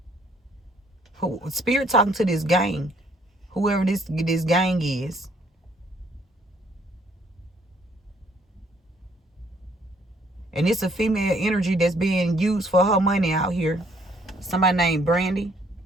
Spirit talking to this gang, whoever this gang is. And it's a female energy that's being used for her money out here. Somebody named Brandy.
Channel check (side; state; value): both; normal; correlation 0.64